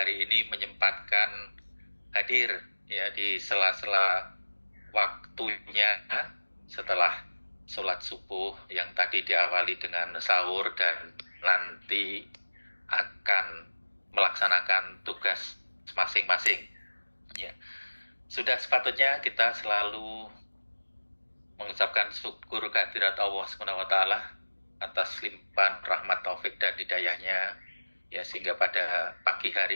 ini menyempatkan hadir ya di sela-sela waktunya setelah sholat subuh yang tadi diawali dengan sahur dan nanti akan melaksanakan tugas masing-masing. Ya, sudah sepatutnya kita selalu mengucapkan syukur kehadirat Allah SWT atas limpahan rahmat taufik dan hidayahnya, ya, sehingga pada pagi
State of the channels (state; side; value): inverted; both; correlation -1.00